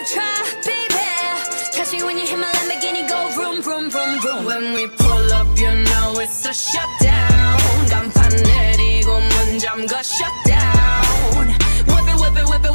tried, baby. Catch me when you hit my Lamborghini, go vroom, vroom, vroom, vroom. When we pull up, you know it's a shutdown. 간판 내리고 문 잠가 shutdown. Whip it, whip it, whip it,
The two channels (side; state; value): both; inverted; correlation -1.00